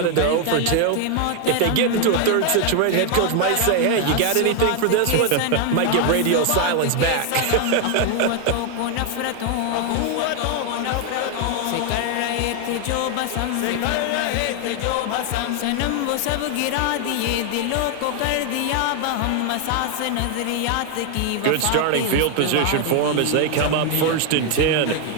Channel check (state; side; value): different; both; correlation 0.00